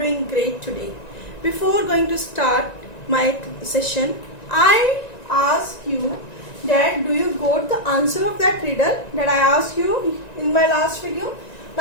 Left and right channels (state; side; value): late; right; 1.9 ms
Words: great today. Before going to start my session, I ask you that do you got the answer of that riddle that I asked you in my last video?